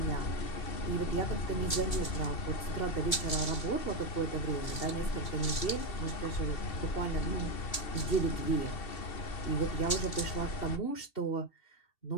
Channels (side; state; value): right; late; 2.7 ms